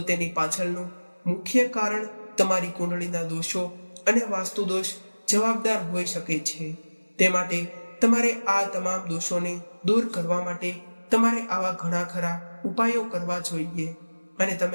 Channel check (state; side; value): inverted; both; correlation -1.00